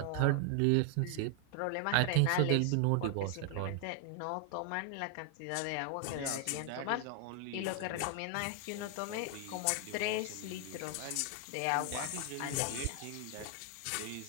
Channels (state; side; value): different; both; correlation 0.00